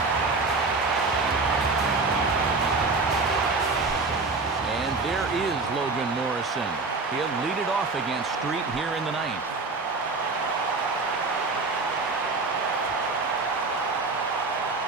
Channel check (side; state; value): left; quieter; 3.8 dB